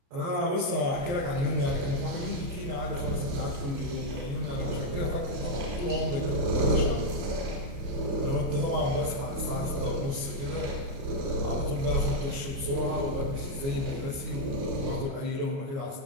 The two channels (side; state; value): left; late; 29 ms